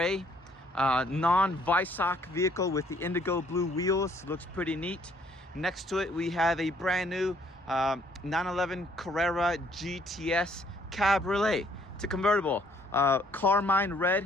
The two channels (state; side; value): normal; both; correlation 0.64